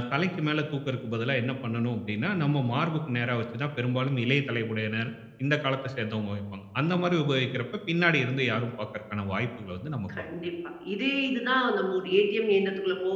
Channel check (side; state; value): both; identical; correlation 1.00